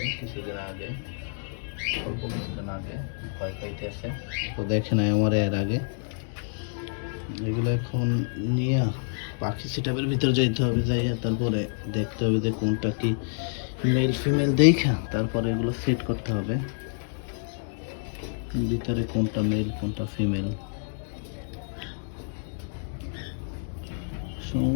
কিছুদিন আগে, অল্প কিছুদিন আগে, ভয় পাইতেছে তো দেখে নাই আমার এর আগে। এগুলো এখন নিয়ে পাখি সেটআপের ভিতরে যাইতে হবে, যাইয়া তারপরে দেখতে হবে যে কোনটা কি মেল ফিমেল দেখা তারপরে এগুলো সেট করতে হবে ভিতরে কোনটা মেল কোনটা ফিমেল।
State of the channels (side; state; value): right; silent; digital silence